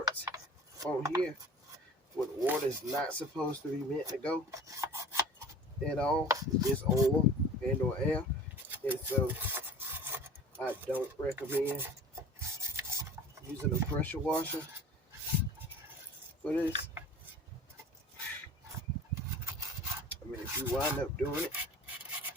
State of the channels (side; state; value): both; normal; correlation 0.42